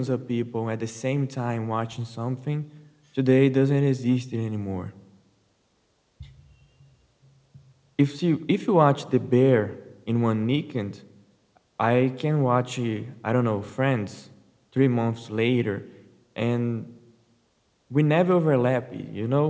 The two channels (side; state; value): both; identical; correlation 1.00